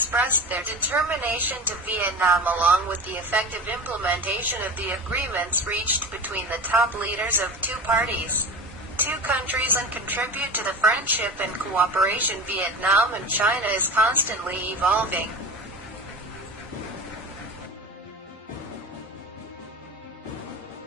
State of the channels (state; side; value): normal; both; correlation 0.31